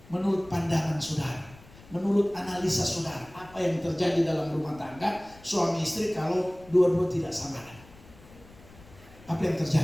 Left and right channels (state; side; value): noise; left; rumble, 22 dB below the sound